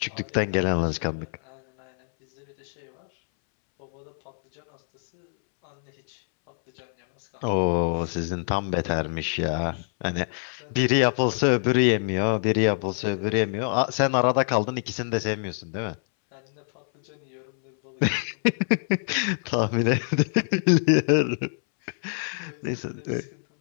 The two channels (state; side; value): silent; right; 61 dB below the other